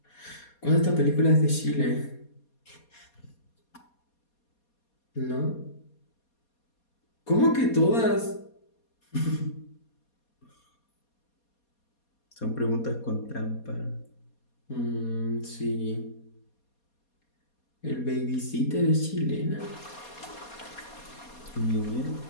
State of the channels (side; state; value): right; late; 4.2 ms